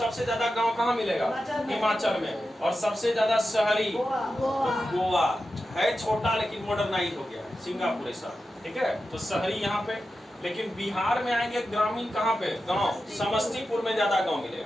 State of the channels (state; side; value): normal; both; correlation 0.91